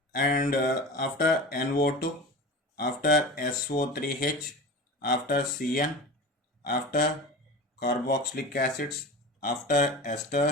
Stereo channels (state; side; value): normal; both; correlation 0.32